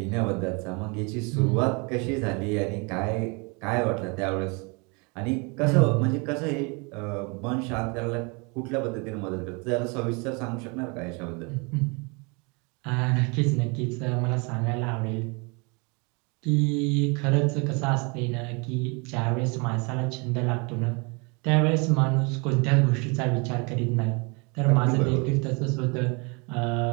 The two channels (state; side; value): quieter; left; 31.0 dB